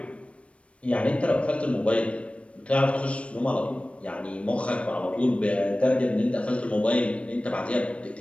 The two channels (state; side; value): late; right; 0.062 ms